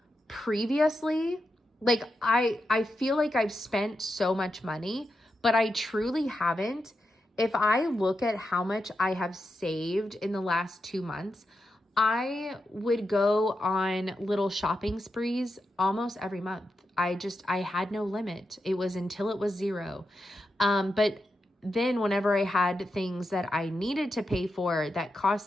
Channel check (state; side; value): normal; both; correlation 0.87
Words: Previously, like I feel like I've spent so much money, but I truly haven't. If I look at how much I have saved in the last 2 months, I would go on little shopping sprees almost every month. I had no limit. It was until it was zero. But then whenever I had things that I needed to pay for that